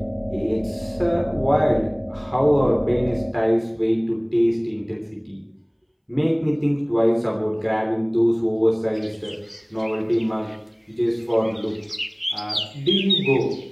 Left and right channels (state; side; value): identical; both; correlation 1.00